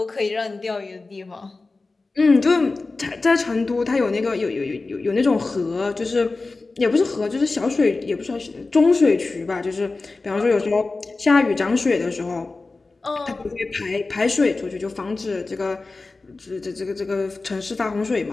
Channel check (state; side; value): quieter; right; 3.6 dB